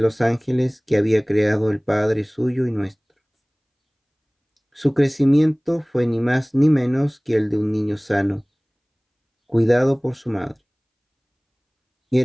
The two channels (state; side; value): identical; both; correlation 1.00